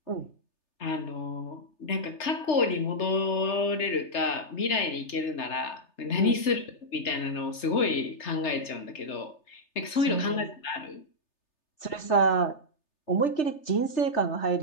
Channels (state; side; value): late; right; 3.3 ms